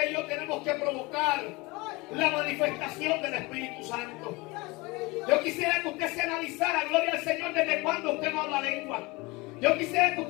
y yo tenemos que provocar la manifestación del Espíritu Santo. Yo quisiera que usted se analizara, gloria al Señor, desde cuándo usted no habla lengua. Yo quisiera que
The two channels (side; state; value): right; quieter; 24.3 dB